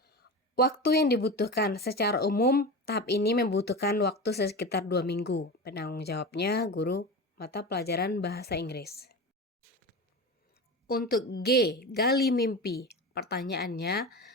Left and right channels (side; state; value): both; normal; correlation 0.26